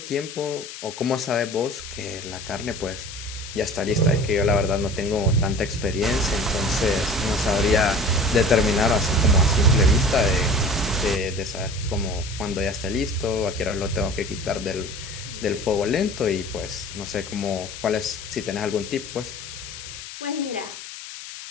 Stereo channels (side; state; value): left; noise; hiss, 12 dB below the sound